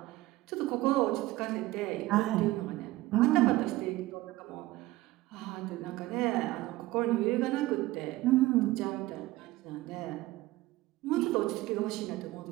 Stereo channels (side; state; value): left; quieter; 18.0 dB